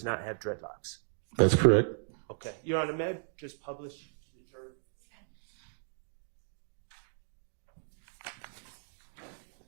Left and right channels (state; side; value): silent; left; digital silence